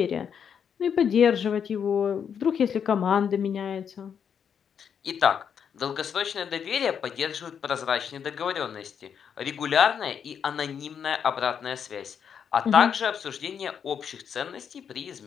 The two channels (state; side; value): quieter; right; 7.6 dB